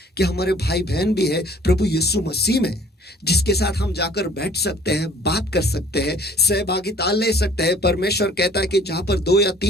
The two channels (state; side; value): normal; both; correlation 0.54